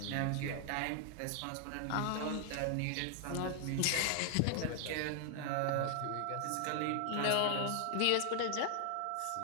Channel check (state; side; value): different; both; correlation 0.00